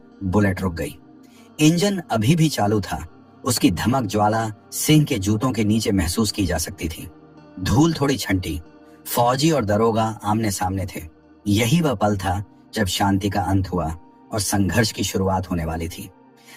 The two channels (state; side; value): identical; both; correlation 1.00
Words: बुलेट रुक गई। इंजन अभी भी चालू था। उसकी धमक ज्वाला सिंह के जूतों के नीचे महसूस की जा सकती थी। धूल थोड़ी छंटी। फौजी और दरोगा आमने सामने थे। यही वह पल था जब शांति का अंत हुआ और संघर्ष की शुरुआत होने वाली थी।